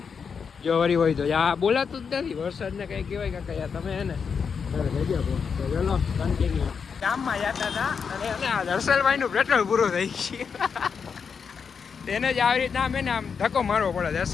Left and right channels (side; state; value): right; quieter; 6.2 dB